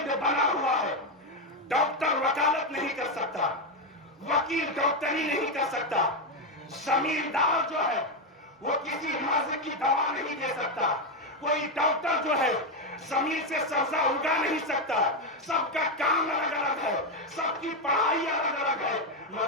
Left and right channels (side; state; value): both; normal; correlation 0.07